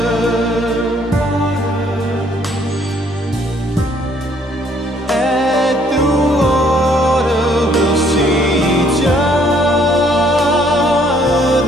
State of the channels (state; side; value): normal; both; correlation 0.64